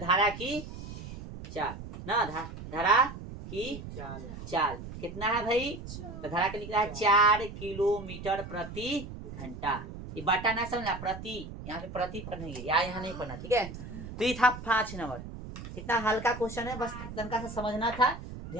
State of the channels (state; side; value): noise; right; rumble, 11 dB below the sound